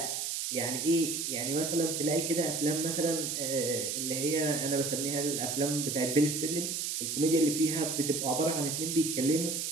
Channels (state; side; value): noise; right; hiss, 2 dB below the sound